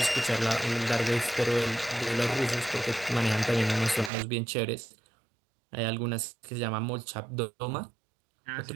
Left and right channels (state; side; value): drops out; left; at 4.1 s